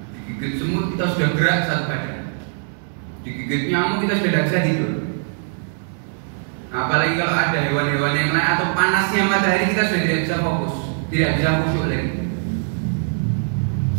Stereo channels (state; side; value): silent; left; 65 dB below the other